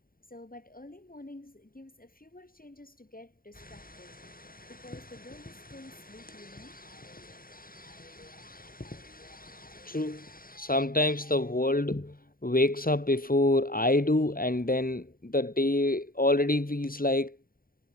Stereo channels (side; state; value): right; late; 0.42 ms